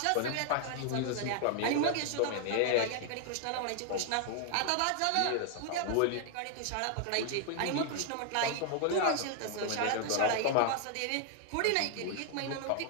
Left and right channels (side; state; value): both; different; correlation 0.00